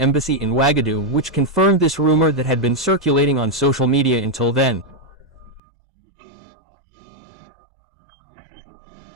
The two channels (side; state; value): left; drops out; at 5.6 s